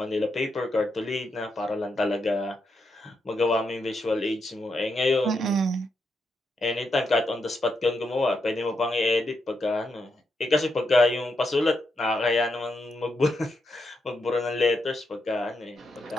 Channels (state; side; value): normal; both; correlation 0.82